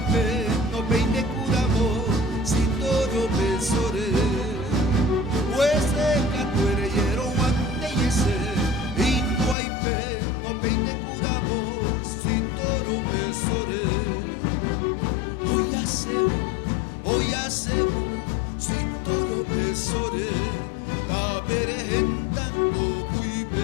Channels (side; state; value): right; drops out; at 9.6 s